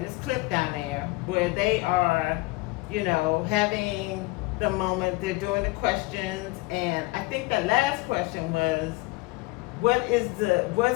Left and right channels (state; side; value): quieter; right; 22.2 dB